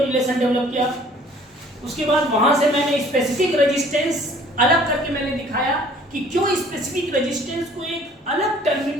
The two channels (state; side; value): normal; both; correlation 0.54